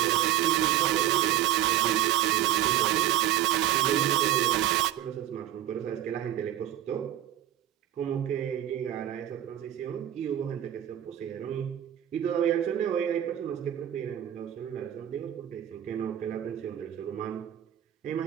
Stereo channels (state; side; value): quieter; left; 11.8 dB